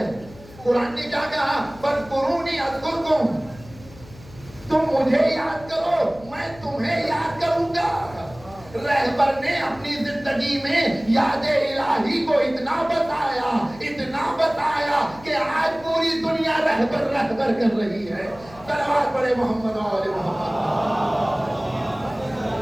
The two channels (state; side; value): noise; left; hum, 20 dB below the sound